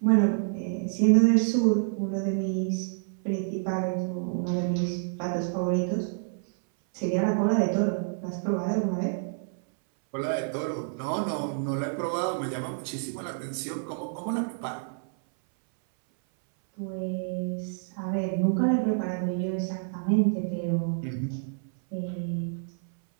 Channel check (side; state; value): left; silent; 58 dB below the other